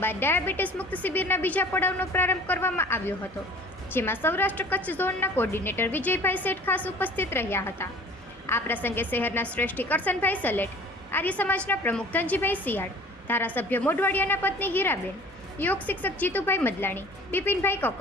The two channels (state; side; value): normal; both; correlation 0.47